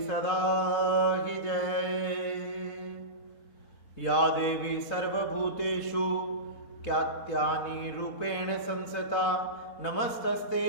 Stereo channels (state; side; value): late; right; 4.0 ms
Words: की जय। या देवी सर्वभूतेषु क्यात्यानि रूपेण संस्थिता नमस्तस्ते